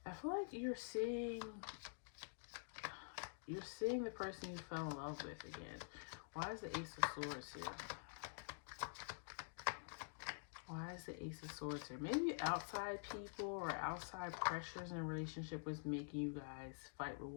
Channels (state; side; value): silent; right; digital silence